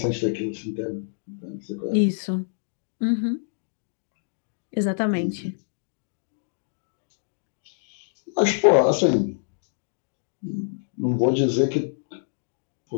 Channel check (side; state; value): right; silent; digital silence